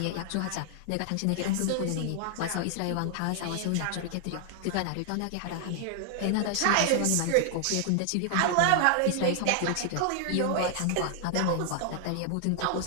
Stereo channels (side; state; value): both; different; correlation 0.00